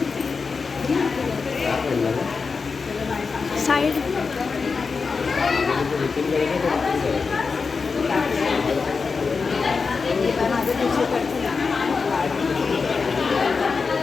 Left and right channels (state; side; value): quieter; right; 4.9 dB